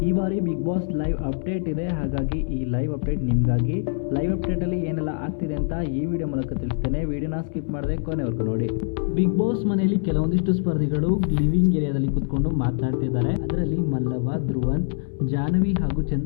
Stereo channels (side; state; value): right; silent; 63 dB below the other